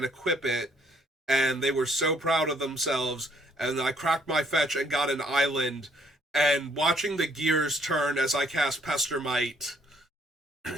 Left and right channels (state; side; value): normal; both; correlation 0.66